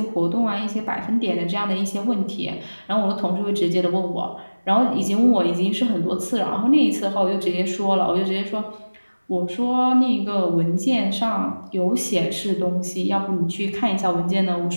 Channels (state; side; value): inverted; both; correlation -1.00